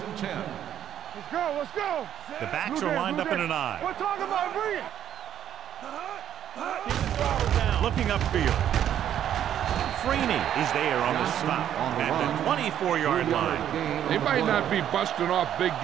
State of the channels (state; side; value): quieter; left; 10.3 dB